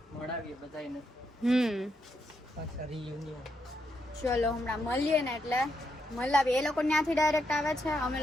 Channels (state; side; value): normal; both; correlation 0.80